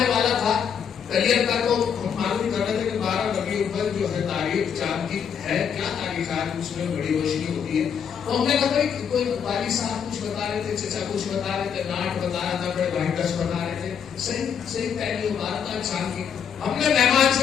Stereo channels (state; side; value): quieter; right; 7.6 dB